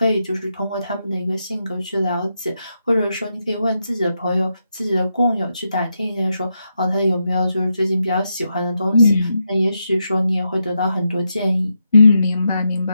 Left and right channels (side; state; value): both; inverted; correlation -0.84